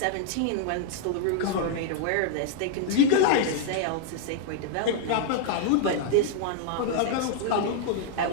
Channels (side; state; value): both; different; correlation -0.01